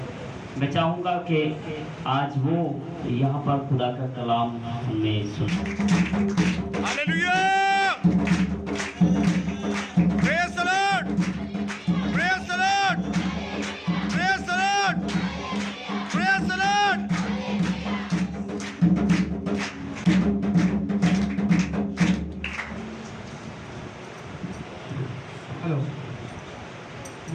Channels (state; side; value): identical; both; correlation 1.00